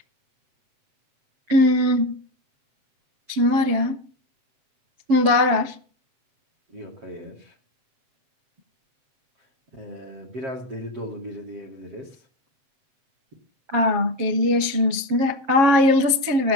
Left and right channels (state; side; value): late; left; 7.3 ms